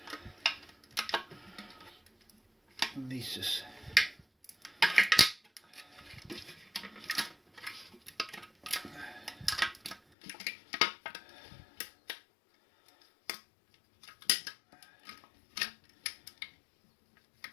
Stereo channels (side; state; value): right; drops out; at 10.0 s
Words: And these just